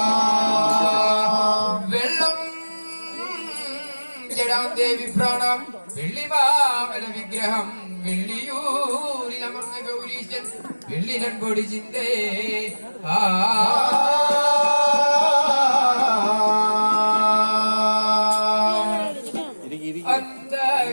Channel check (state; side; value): inverted; both; correlation -1.00